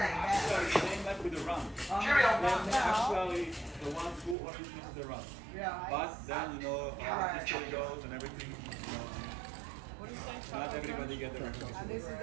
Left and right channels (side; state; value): left; drops out; at 4.4 s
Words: Same like with the rum. Cheerio. They're actually the ones who originated the rum. Yeah. But then, you know, how history goes and everything, you know, not everybody get the recognition. And this is